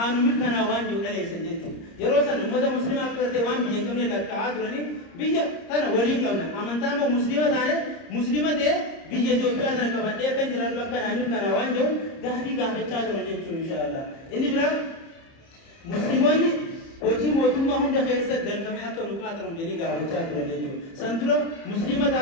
nu mirkanaa'u waan jiru dhaleessan jechuudha yeroo san ummata muslimaa akka gartee waan biyya qabne lakkaa'aa turanii biyya tana waliin qabna amantaan moo muslima taane muslima ta'e biyya Itoophiyaa tana qabadhee akka jiraatu akka naa mirkanaa'u waan jiru gaafii gaafachaa turan jechuudha inshaallah inni bira muslimoonni Oji motumma hunda keessa galfame akka nu qaatamu jedhanii gaafachaa turan jechuudha. Santura muslima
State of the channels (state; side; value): late; right; 30 ms